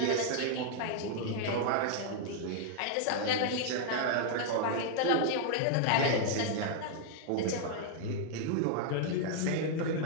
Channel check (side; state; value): both; different; correlation 0.00